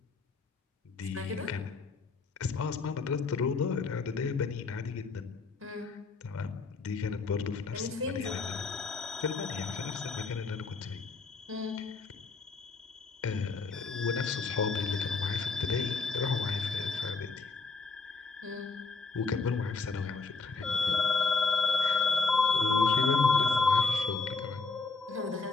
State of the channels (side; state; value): right; quieter; 4.2 dB